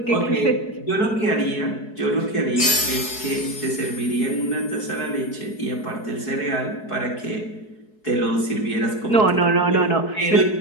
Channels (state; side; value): late; right; 4.7 ms